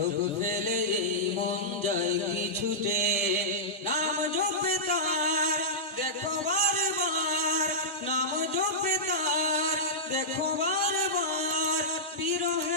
ফেলে এই মন যায় কি ছুটে, নাম জপে তার দেখো বারবার, নাম জপে তার দেখো বারবার,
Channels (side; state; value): both; normal; correlation -0.13